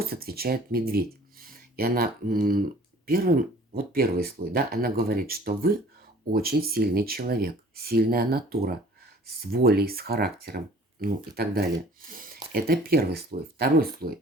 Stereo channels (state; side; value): normal; both; correlation 0.51